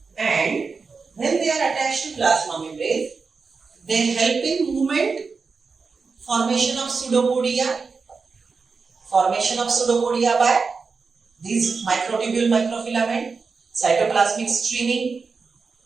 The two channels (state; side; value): quieter; left; 4.8 dB